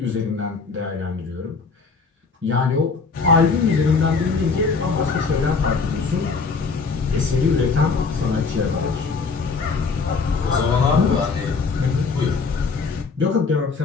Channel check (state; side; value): quieter; right; 4.7 dB